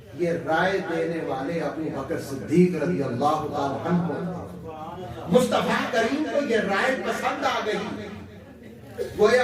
یہ رائے دینے والے ابو بکر صدیق رضی اللہ تعالی عنہ. مصطفیٰ کریم کو یہ رائے پسند آ گئی. گویا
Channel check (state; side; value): identical; both; correlation 1.00